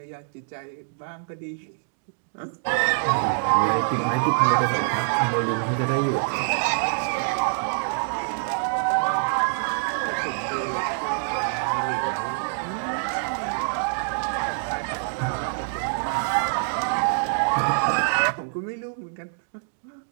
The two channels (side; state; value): left; silent; digital silence